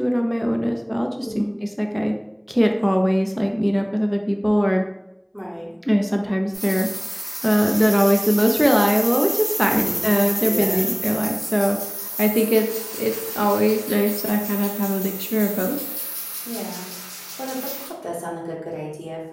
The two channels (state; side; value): identical; both; correlation 1.00